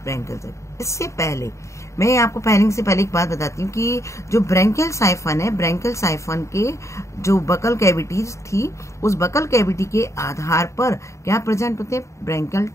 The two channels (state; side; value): late; right; 0.14 ms